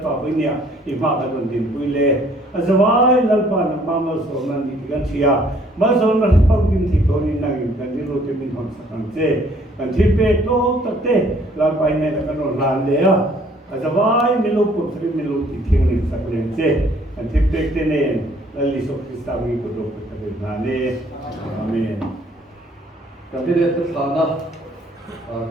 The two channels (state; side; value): normal; both; correlation 0.61